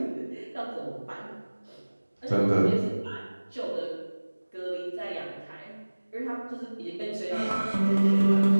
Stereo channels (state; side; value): inverted; both; correlation -1.00